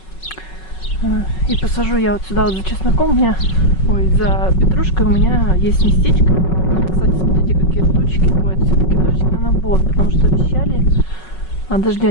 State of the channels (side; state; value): right; late; 5.4 ms